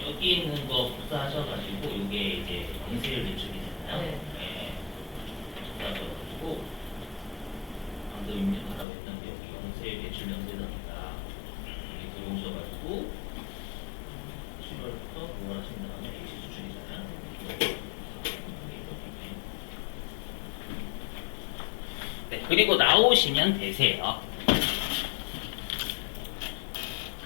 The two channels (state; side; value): drops out; right; at 8.8 s